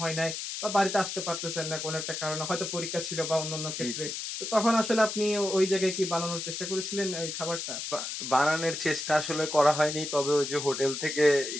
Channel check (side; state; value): left; noise; hiss, 5 dB below the sound